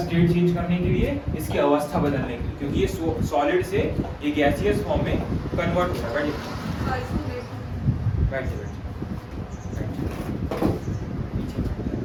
चेंज करने के लिए, इसकी अवस्था बदलने के लिए, क्योंकि ये सॉलिड से ये गैसियस फॉर्म में कन्वर्ट हो रहा है। बैठिए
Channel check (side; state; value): both; identical; correlation 1.00